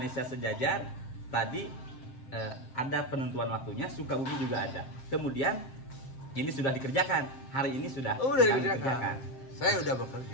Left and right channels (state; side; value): late; right; 7.5 ms